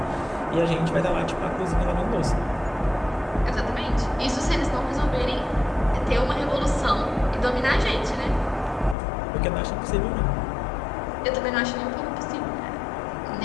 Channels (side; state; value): right; drops out; at 9.0 s